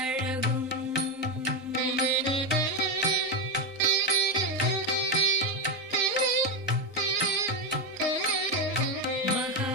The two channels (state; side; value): normal; both; correlation 0.10